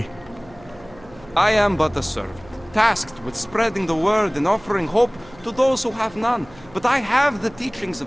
I am but a servant, tasked with spreading the word and offering hope to those who have none. But I have the teachings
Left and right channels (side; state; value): right; noise; hum, 23 dB below the sound